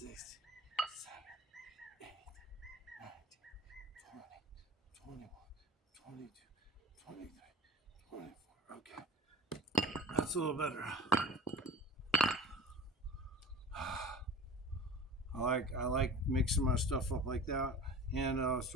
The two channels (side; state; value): both; normal; correlation 0.37